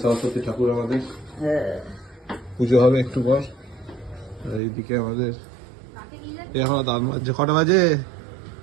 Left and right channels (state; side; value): drops out; left; at 4.6 s